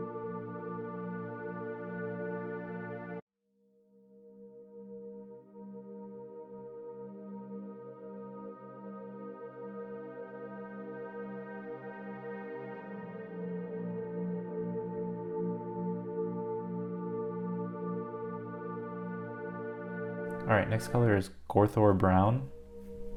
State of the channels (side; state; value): both; identical; correlation 1.00